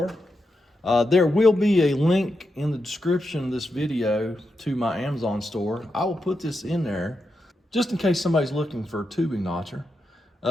There will be a link in the description of this video to my Amazon store. I will put this in there just in case somebody's looking for a tubing notcher.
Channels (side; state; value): both; normal; correlation 0.86